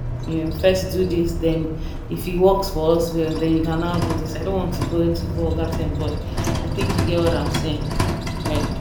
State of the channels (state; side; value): identical; both; correlation 1.00